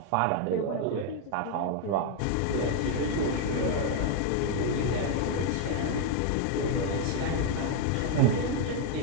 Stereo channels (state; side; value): different; both; correlation 0.00